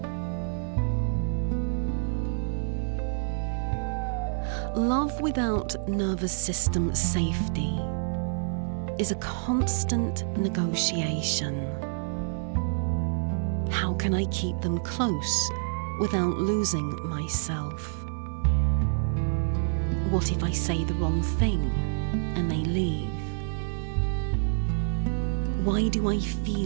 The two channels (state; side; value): silent; left; 59 dB below the other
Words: Love without nervous system safety is a constant negotiation. How can I keep them close without losing myself? What if I say the wrong thing and they leave? Why do I